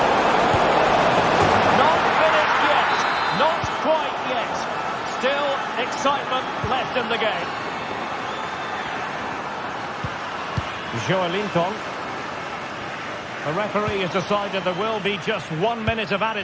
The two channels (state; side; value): identical; both; correlation 1.00